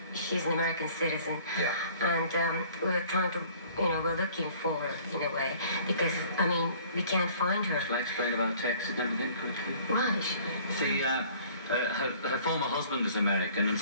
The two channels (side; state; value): both; inverted; correlation -0.52